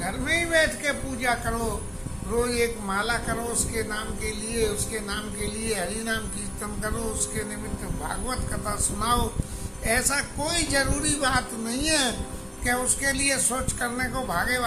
में ही बैठ के पूजा करो, रोज एक माला करो उसके नाम के लिए, उसके नाम के लिए हरि नाम कीर्तन करो, उसके निमित्त भागवत कथा सुनाओ। ऐसा कोई जरूरी बात नहीं है कि उसके लिए सोच करने को भागे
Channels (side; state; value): both; identical; correlation 1.00